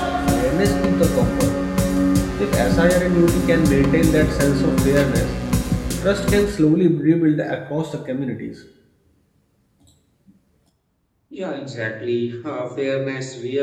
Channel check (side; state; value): both; identical; correlation 1.00